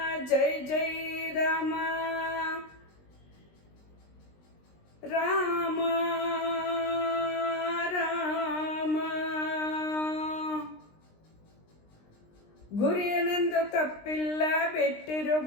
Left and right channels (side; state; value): right; late; 20 ms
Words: ಜೈ ಜೈ ರಾಮ, ರಾಮ ರಾಮ. ಗುರಿಯನೆಂದು ತಪ್ಪಿಲ್ಲ